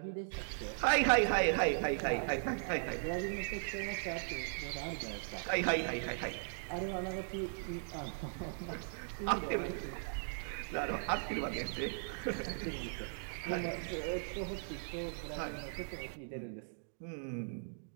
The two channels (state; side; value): silent; left; digital silence